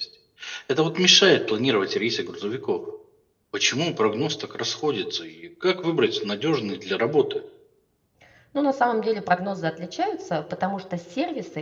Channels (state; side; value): identical; both; correlation 1.00